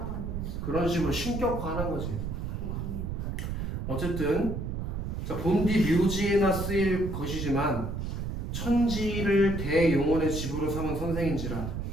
그런 식으로 신격화하는 거지. 어쨌든 자, 본디 묘지에나 쓰일 것이지만 천지를 대용언의 집으로 삼은 선생인지라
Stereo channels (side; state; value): right; noise; rumble, 4 dB below the sound